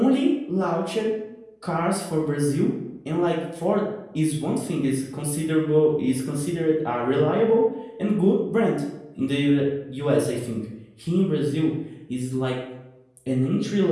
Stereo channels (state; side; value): identical; both; correlation 1.00